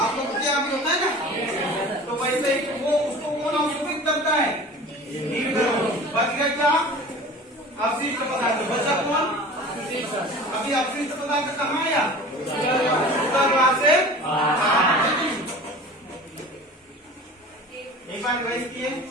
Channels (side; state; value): both; normal; correlation 0.40